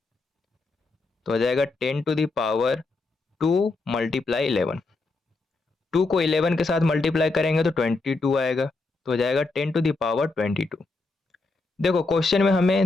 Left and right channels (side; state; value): right; quieter; 3.5 dB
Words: तो हो जाएगा 10⁻2 मल्टीप्लाई 11। 2 को 11 के साथ मल्टीप्लाई करेंगे तो 22 आएगा, तो हो जाएगा 10⁻22। देखो, क्वेश्चन में